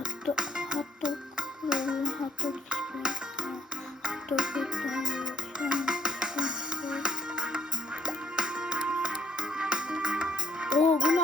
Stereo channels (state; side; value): normal; both; correlation 0.71